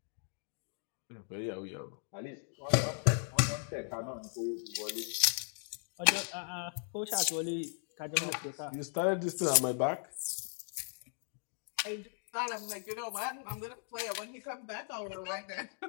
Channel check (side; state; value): right; silent; 53 dB below the other